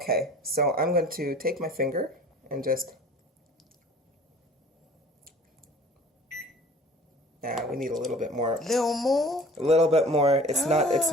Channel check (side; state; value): both; normal; correlation 0.46